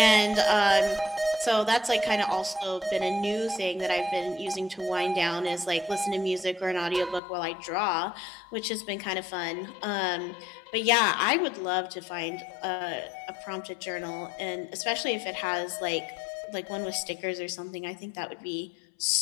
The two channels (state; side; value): drops out; right; at 7.2 s